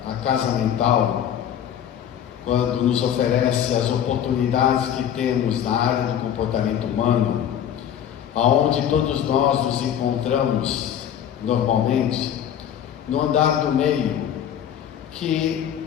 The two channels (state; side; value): quieter; right; 9.7 dB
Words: a casa mental, quando nos oferece as oportunidades que temos na área do comportamento humano, aonde todos nós nos encontramos normalmente, no andar do meio,